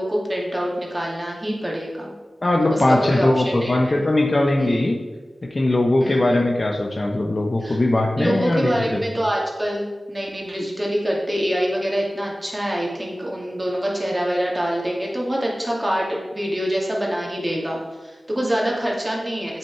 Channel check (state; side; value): normal; both; correlation 0.96